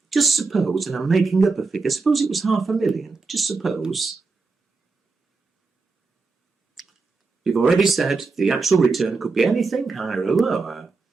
just suppose, and I'm making up a figure, suppose it was 500,000, just suppose. We've already said the actual return could be anything higher or lower,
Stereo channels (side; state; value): left; quieter; 4.1 dB